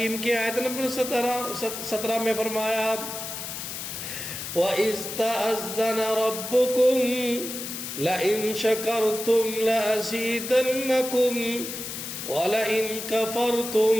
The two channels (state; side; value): noise; left; hiss, 7 dB below the sound